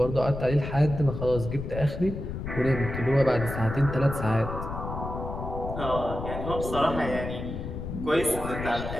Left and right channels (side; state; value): left; noise; rumble, 7 dB below the sound